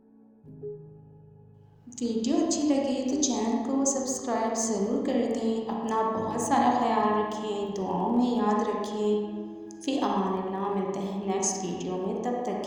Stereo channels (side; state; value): both; identical; correlation 1.00